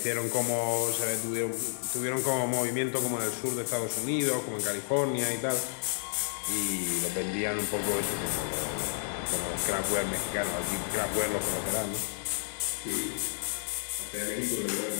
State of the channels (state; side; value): silent; right; digital silence